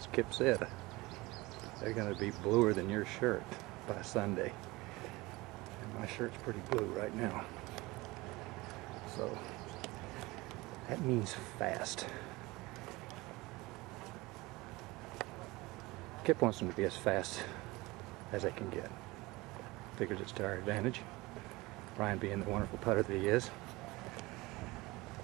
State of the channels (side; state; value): left; quieter; 21.7 dB